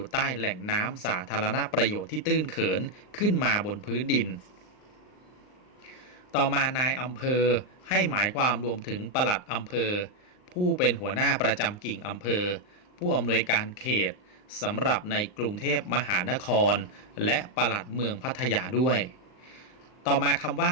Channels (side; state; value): right; late; 39 ms